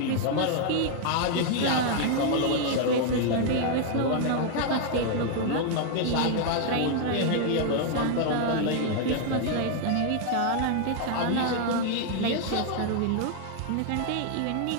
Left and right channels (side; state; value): both; different; correlation 0.00